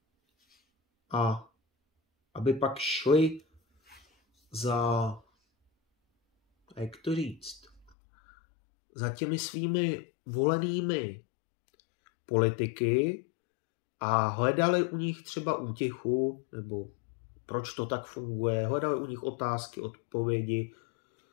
a aby pak šli za, jak to říct, za těmi svými volenými politiky a hledali u nich třeba útěchu, nebo proč to tak funguje, hledali u nich otázky, odpovědi.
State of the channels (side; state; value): right; drops out; at 8.0 s